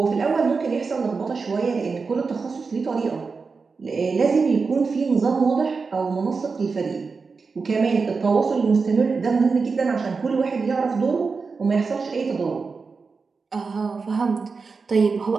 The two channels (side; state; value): left; quieter; 4.7 dB